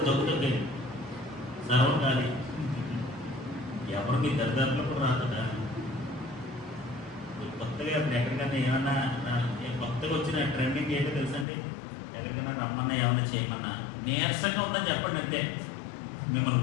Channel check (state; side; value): drops out; right; at 11.5 s